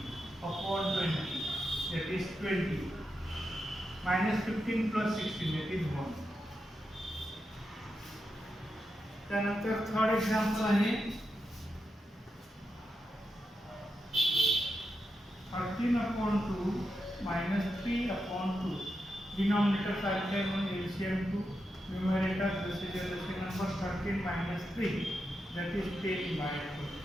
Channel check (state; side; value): normal; both; correlation 0.87